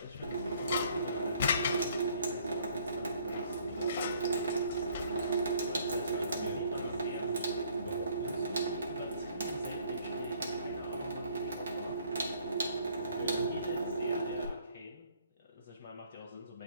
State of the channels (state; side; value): inverted; both; correlation -0.61